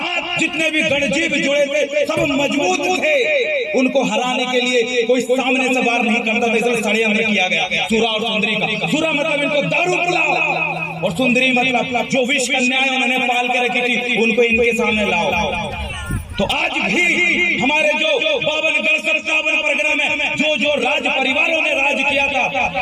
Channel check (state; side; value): identical; both; correlation 1.00